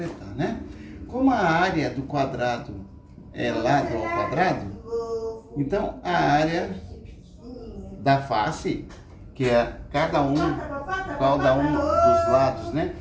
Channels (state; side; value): identical; both; correlation 1.00